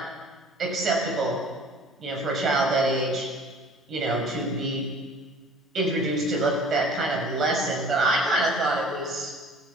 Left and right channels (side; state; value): both; normal; correlation 0.48